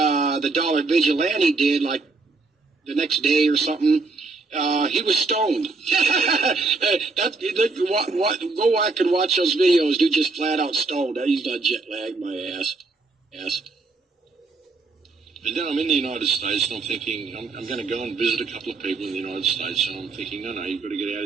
the Dollar Vigilante did, like the next day or something, he was stoned. Go back and watch those videos. Dude just flat out stoned. He's not jet lagged, my ass. And then I'm in the United States, and I'm thinking, I'm going to go and visit a couple of people in the United States, and I'm thinking, no, you've got to get out of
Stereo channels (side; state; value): left; quieter; 3.8 dB